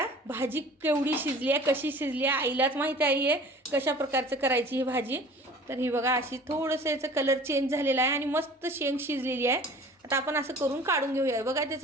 भाजी केवढी शिजली आहे, कशी शिजली आहे आईलाच माहिती आहे कशा प्रकारचं करायची ही भाजी. तर ही बघा अशी थोडंसं याचं कलर चेंज झालेला आहे आणि मस्त शेंग शिजलेली आहे. आता आपण असं करून काढून घेऊया. बघा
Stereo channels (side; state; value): both; normal; correlation 0.45